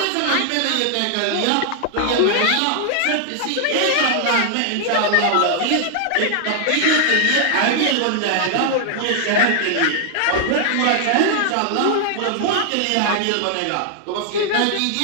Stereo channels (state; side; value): different; both; correlation 0.00